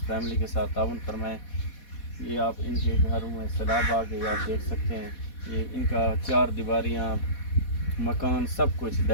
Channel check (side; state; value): right; late; 4.2 ms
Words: فیملی کے ساتھ تعاون فرمائیں۔ یہ آپ ان کے گھروں میں سیلاب آ گئے، آپ دیکھ سکتے ہیں یہ ان کا چار دیواریاں مکان سب کچھ